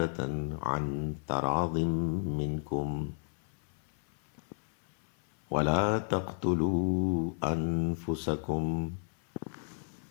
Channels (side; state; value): right; silent; 56 dB below the other